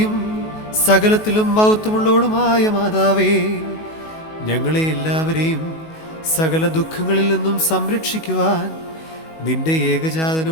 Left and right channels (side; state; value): right; late; 19 ms